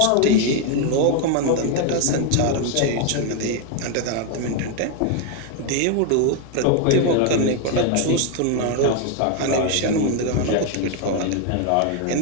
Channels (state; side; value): different; both; correlation 0.01